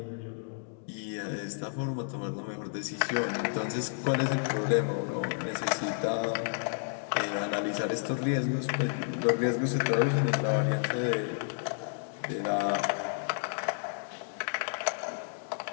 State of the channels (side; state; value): right; silent; digital silence